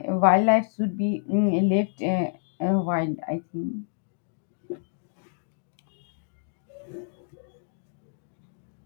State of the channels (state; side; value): silent; right; digital silence